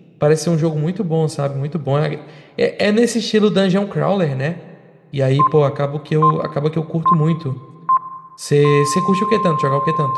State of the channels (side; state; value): both; identical; correlation 1.00